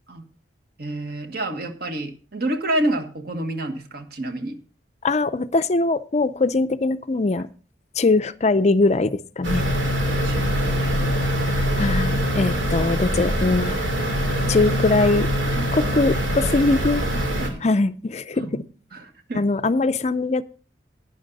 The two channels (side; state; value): both; normal; correlation 0.51